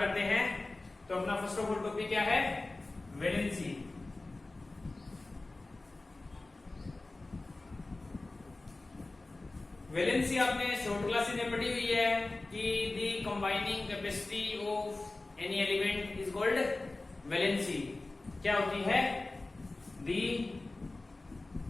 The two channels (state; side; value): quieter; right; 3.1 dB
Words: हैं। तो अपना फर्स्ट ऑफ ऑल टॉपिक क्या है? वैलेंसी। वैलेंसी आपने शॉर्ट क्लासेस में पढ़ी हुई है कि the combining capacity of any element is called valency. क्या होती है? The